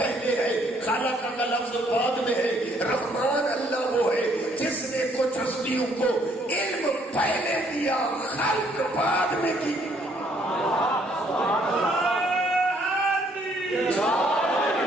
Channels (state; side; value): normal; both; correlation 0.66